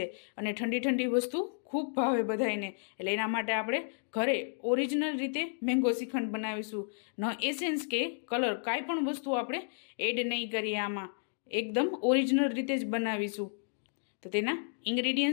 અને ઠંડી ઠંડી વસ્તુ ખૂબ ભાવે બધાને. એટલે એના માટે આપણે ઘરે ઓરિજિનલ રીતે મેંગો શ્રીખંડ બનાવીશું. ન એસેન્સ કે કલર કાંઈ પણ વસ્તુ આપણે એડ નહીં કરીએ, આમાં એકદમ ઓરિજિનલ રીતે જ બનાવીશું. તો તેના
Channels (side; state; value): right; silent; digital silence